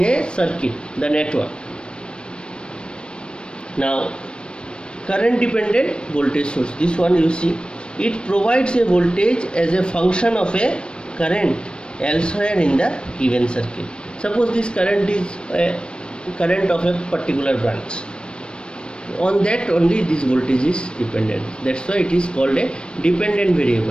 a circuit, the network. Now current dependent voltage source, this one you see, it provides a voltage as a function of a current elsewhere in the given circuit. Suppose this current is a current of a particular branch, on that only this voltage is dependent. That's why it is called a dependent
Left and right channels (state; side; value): late; right; 0.055 ms